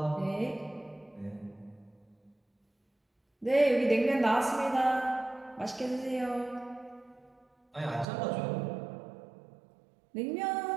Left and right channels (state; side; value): drops out; left; at 8.1 s